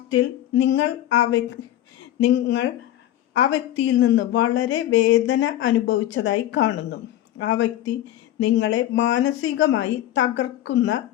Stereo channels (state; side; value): quieter; right; 13.3 dB